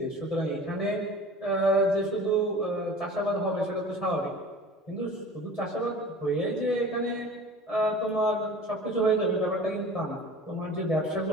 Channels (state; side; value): normal; both; correlation 0.41